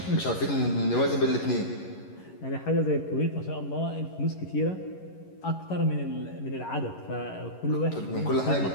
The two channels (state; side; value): late; right; 11 ms